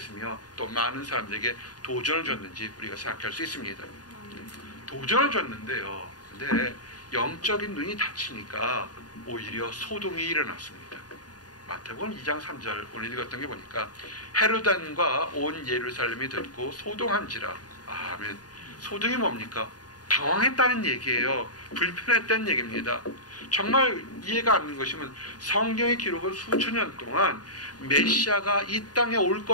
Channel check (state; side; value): late; right; 0.69 ms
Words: 또 많은 사람들에게 도전을 줬는지 우리가 생각할 수 있습니다. 도전을 줬는데요. 근데 영적인 눈이 닫히니까 오히려 소동이 일어났습니다. 마태복음 2장 3절 오늘 읽었던 게 보니까 헤로단과 온 예루살렘이 듣고 소동한지라. 아멘. 소동이 뭡니까? 당황했다는 얘기예요. 불편했다는 얘기입니다. 정말 이해가 안 되는 것이면 성경의 기록은 수천 년 동안 메시아가 이 땅에 올